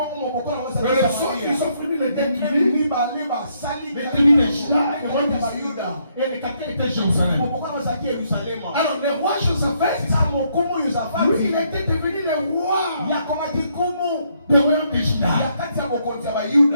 ils ont fini les 10 tribus. Les tribus de Juda et le royaume d'Israël. Et les capteurs étaient Jérusalem. Alors le roi Josaphat, lui, il était devenu le roi du royaume de Juda.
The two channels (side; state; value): both; inverted; correlation -0.72